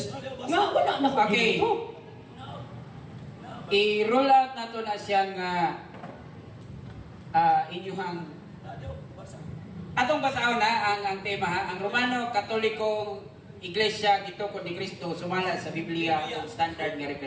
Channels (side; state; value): both; identical; correlation 1.00